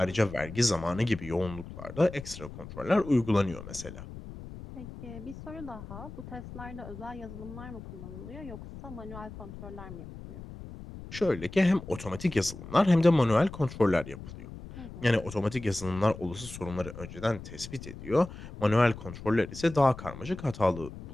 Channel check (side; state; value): left; noise; rumble, 13 dB below the sound